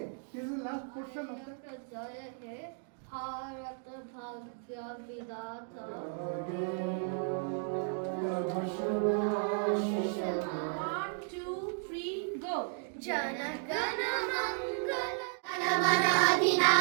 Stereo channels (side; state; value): left; silent; 55 dB below the other